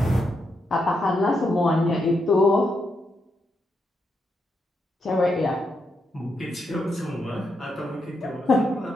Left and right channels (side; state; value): both; normal; correlation 0.82